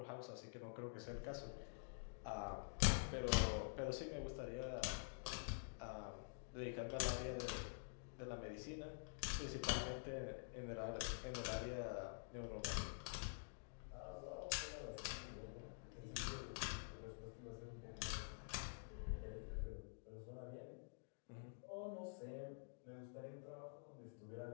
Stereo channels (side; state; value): right; silent; digital silence